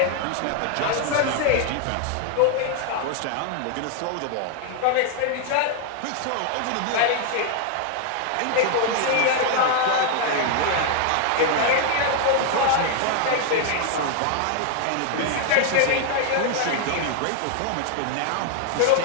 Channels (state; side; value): different; both; correlation 0.00